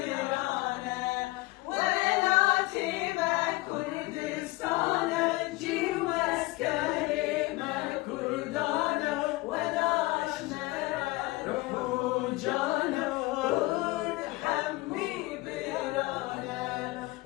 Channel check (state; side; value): quieter; right; 21.3 dB